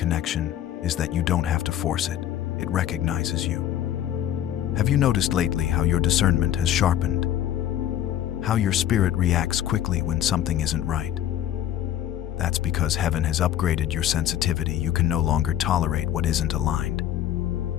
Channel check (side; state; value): right; quieter; 11.4 dB